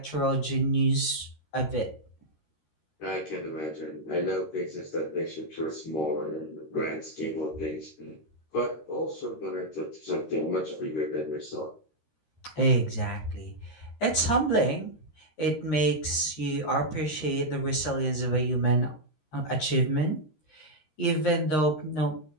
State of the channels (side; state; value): right; late; 13 ms